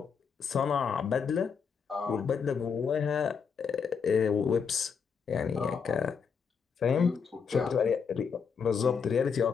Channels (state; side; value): quieter; right; 6.2 dB